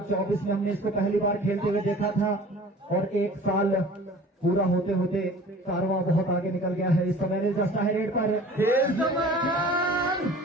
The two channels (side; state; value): both; normal; correlation 0.45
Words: में हमने इसको पहली बार खेलते हुए देखा था और 1 साल पूरा होते होते कारवां बहुत आगे निकल गया है। इस समय जस्टा है रेड पर, एक